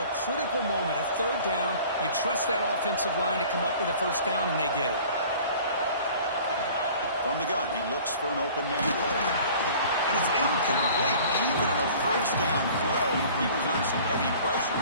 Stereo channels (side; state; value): both; inverted; correlation -0.47